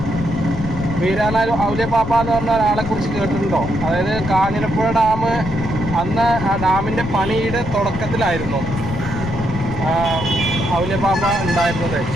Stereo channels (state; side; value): noise; left; rumble, 7 dB below the sound